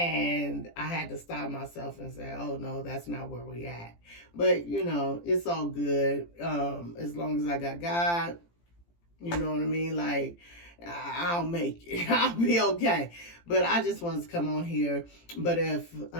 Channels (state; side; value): late; right; 17 ms